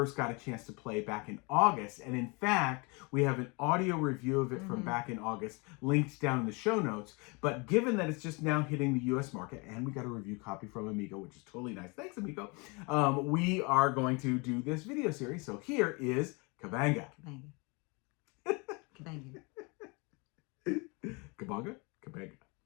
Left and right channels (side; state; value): right; quieter; 29.5 dB